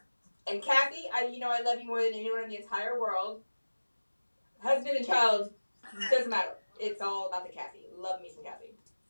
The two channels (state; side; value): inverted; both; correlation -1.00